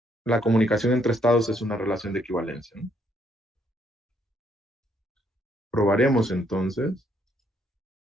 la comunicación entre estados es una relación de equivalencia, ¿no? Probaremos entonces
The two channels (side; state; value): both; normal; correlation 0.71